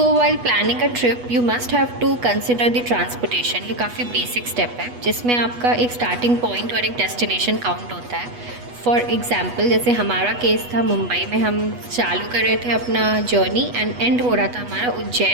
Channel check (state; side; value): late; left; 8.2 ms